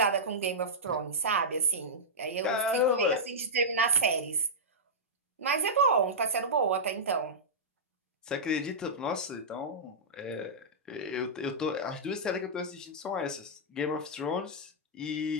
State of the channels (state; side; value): normal; both; correlation -0.11